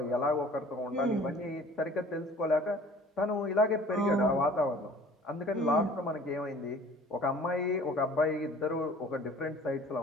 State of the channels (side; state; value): both; normal; correlation 0.49